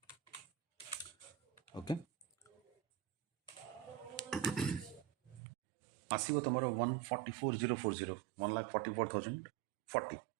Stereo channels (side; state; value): left; drops out; at 5.4 s